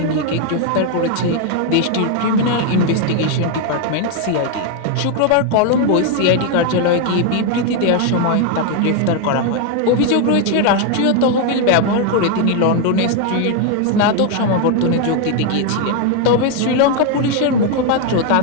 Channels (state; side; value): different; both; correlation 0.01